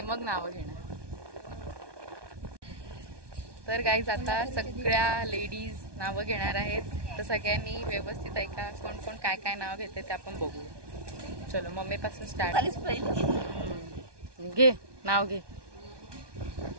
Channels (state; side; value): late; left; 1.2 ms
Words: मग नावं घेणार. तर गाईज आता सगळ्या लेडीज नावं घेणार आहेत. तर सगळ्यांनी व्यवस्थित ऐका, कोण कोण काय काय नाव घेते ते आपण बघू. चलो मम्मी पासून स्टार्ट. घे नाव घे.